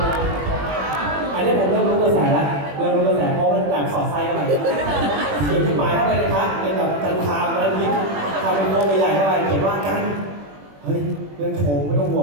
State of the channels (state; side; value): late; left; 21 ms